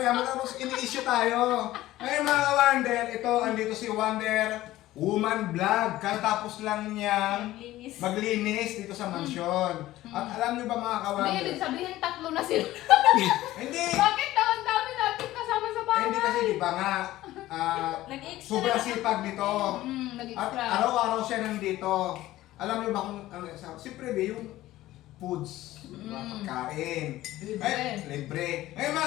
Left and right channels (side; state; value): right; quieter; 15.7 dB